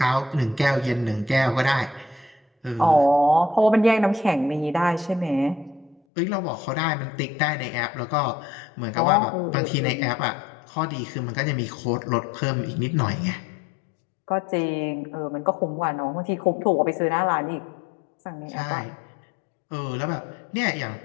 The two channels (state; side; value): drops out; right; at 6.0 s